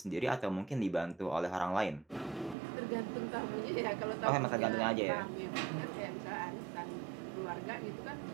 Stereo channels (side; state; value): left; drops out; at 2.6 s